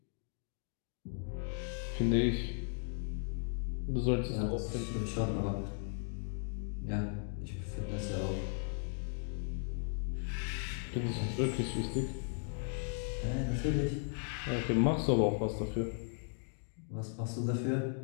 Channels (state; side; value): silent; right; 53 dB below the other